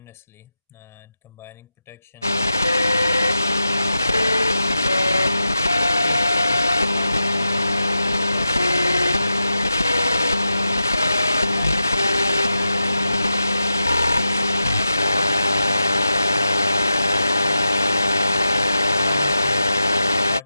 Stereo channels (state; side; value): inverted; both; correlation -0.90